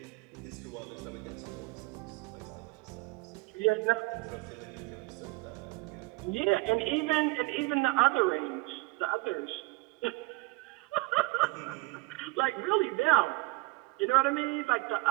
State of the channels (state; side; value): quieter; left; 23.6 dB